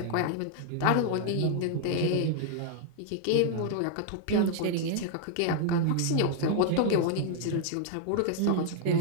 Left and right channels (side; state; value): both; different; correlation 0.00